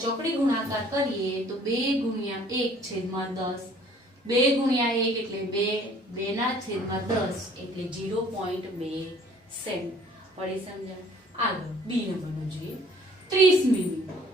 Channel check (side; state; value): both; normal; correlation 0.55